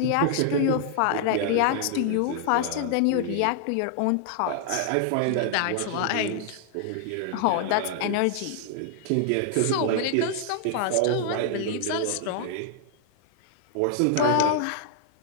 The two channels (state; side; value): different; both; correlation 0.00